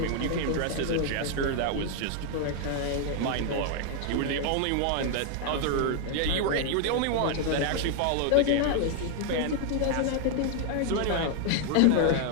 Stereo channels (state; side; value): different; both; correlation 0.00